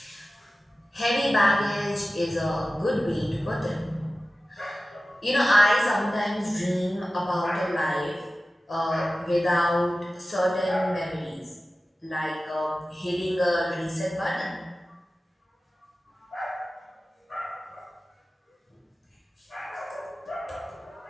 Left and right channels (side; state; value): both; normal; correlation 0.96